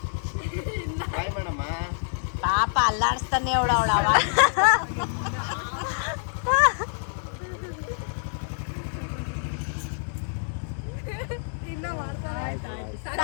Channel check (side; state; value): right; silent; 60 dB below the other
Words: ಬಾಯ್ ಮಾಡಮ್ಮ. ಪಾಪ ಅಲ್ಲಾಡಿಸ್ತಾನೆ ಅವಳ